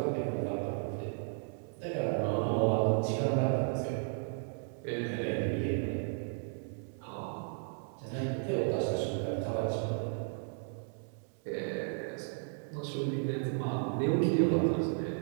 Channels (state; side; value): silent; left; 55 dB below the other